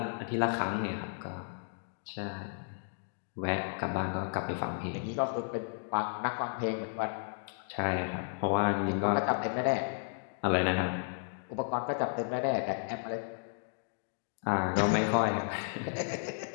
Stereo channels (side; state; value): right; silent; digital silence